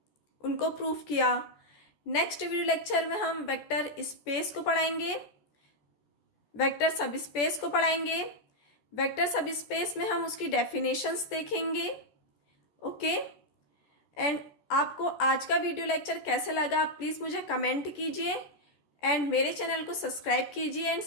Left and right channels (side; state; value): right; late; 14 ms